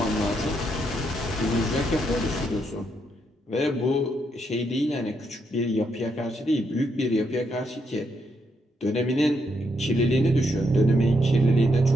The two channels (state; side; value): normal; both; correlation 0.78